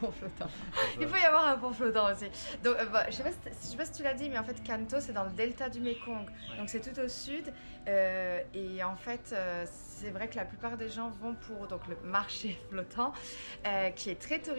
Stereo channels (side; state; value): both; inverted; correlation -1.00